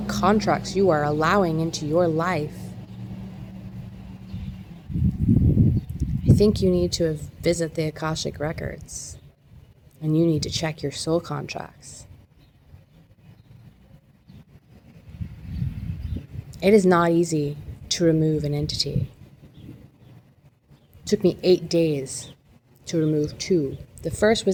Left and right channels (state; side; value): identical; both; correlation 1.00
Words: contracts you are allowing into your life, I think you need to visit the Akashic Records and you need to check your soul contracts. It is not easy to remove an entity. It took me 8 days to remove 2. The first